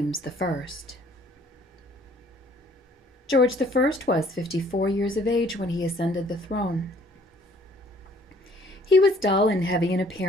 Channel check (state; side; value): normal; both; correlation 0.59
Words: I. George I was 54 years of age when he ascended the throne. He was dull and heavy in